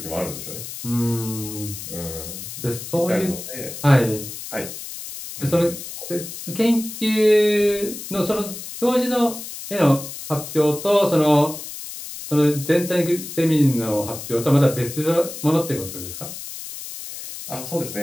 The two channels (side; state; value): left; noise; hiss, 10 dB below the sound